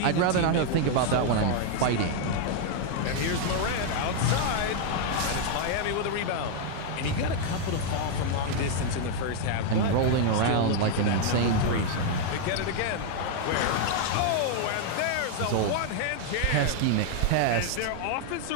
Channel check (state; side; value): different; both; correlation 0.00